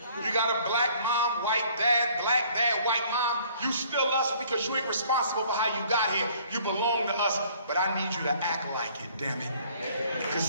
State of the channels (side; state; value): both; inverted; correlation -0.57